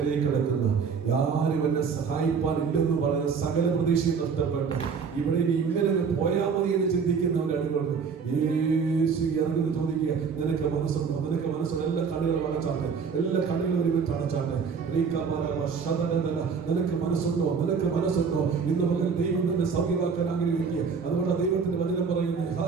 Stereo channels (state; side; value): quieter; left; 5.9 dB